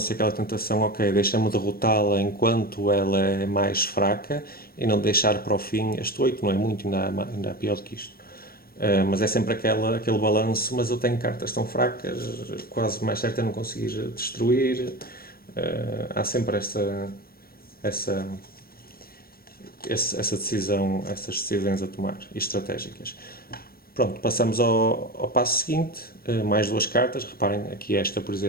aquela tentação, ok, deixa-me derrotá-la enquanto ela é mais fraca e não deixar para o fim. Este 8 não é muito, ainda há pior do que isto. Mas é sempre aquele balanço, mas eu tenho cartas tão fracas, quase mais certo é não conseguir destruir. Há sempre essa decisão, essas decisões a tomar, e estratégicas. Pronto, passamos ao passo seguinte, mais 2 cartas. Reparem aqui esta, por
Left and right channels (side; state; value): right; late; 0.44 ms